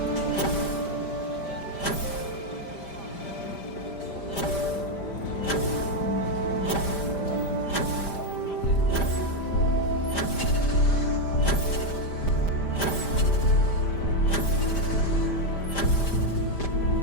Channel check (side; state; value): right; late; 5.0 ms